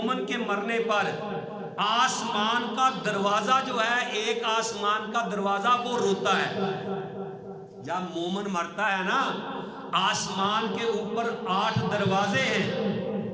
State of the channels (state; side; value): identical; both; correlation 1.00